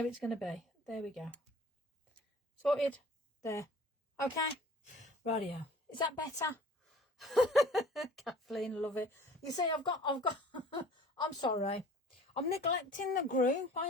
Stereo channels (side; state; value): both; normal; correlation 0.48